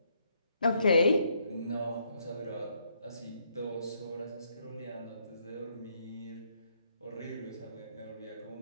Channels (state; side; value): inverted; both; correlation -0.73